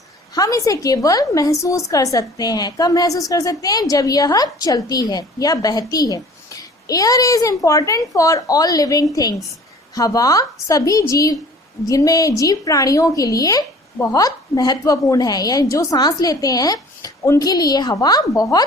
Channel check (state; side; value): normal; both; correlation 0.48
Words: हम इसे केवल महसूस कर सकते हैं. कब महसूस कर सकते हैं? जब यह चलती है या बहती है. Air is important for all living things. हवा सभी जीव जिनमें जीव प्राणियों के लिए बहुत महत्वपूर्ण है, या जो सांस लेते हैं उनके लिए हवा